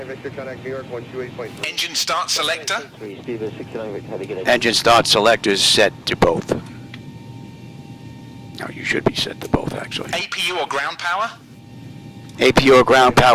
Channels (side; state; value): both; identical; correlation 1.00